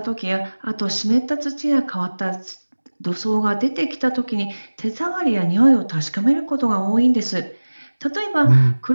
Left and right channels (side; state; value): both; inverted; correlation -1.00